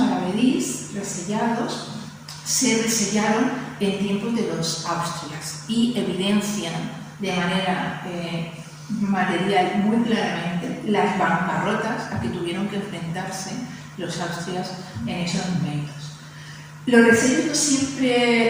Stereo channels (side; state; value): both; identical; correlation 1.00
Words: resellados se resellaron en tiempos de los Austrias y evidencian de manera material muy claramente las bancarrotas a que tuvieron que enfrentarse los Austrias en esos momentos. Los resellos no